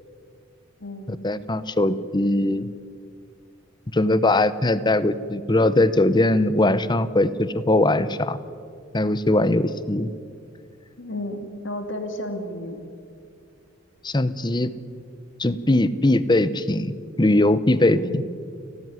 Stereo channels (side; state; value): both; normal; correlation 0.68